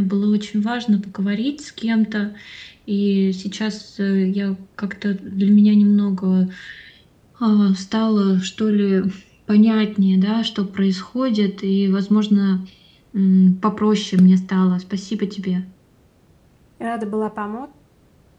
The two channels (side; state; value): both; identical; correlation 1.00